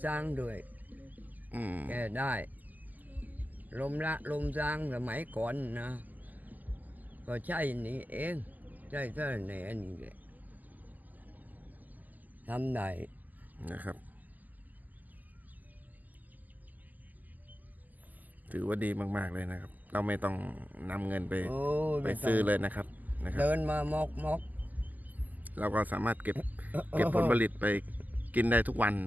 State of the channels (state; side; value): late; left; 0.082 ms